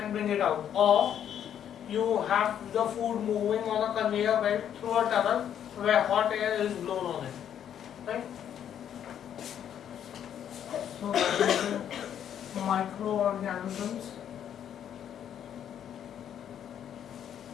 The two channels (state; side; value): quieter; right; 9.5 dB